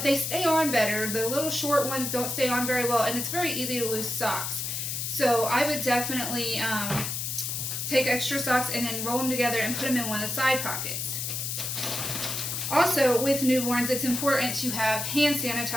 they stay on better. The little short ones don't stay on very well, and it's very easy to lose socks. So I would definitely take extra socks and then roll them together and put them in one of the side pockets. Also, with newborns, it's important to have hand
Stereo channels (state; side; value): noise; left; hiss, 3 dB below the sound